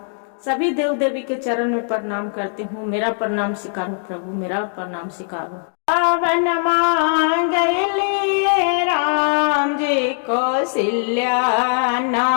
सभी देव देवी के चरण में प्रणाम करती हूँ, मेरा प्रणाम स्वीकार हो प्रभु, मेरा प्रणाम स्वीकार हो। पावन मांगलिए राम जी कौशल्या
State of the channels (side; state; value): right; silent; 66 dB below the other